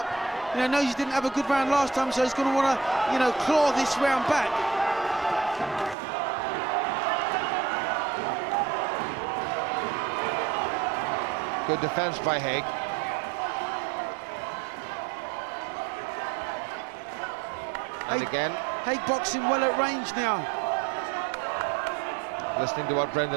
You know, knows he didn't have a good round last time, so he's going to want to, you know, claw this round back. Good defense by Hague. And again, Hague boxing well at range now. Listening to what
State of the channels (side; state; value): left; drops out; at 6.0 s